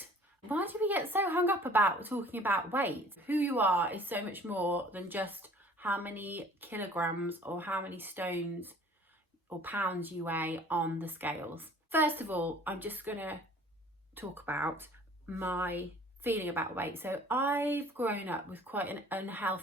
Why do we get so hung up about talking about weight? Who you are is so much more than just how many kilograms or how many stones or pounds you weigh on the scales. First of all, I'm just gonna talk about my feeling about weight. So I've grown up with quite an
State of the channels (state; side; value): normal; both; correlation 0.51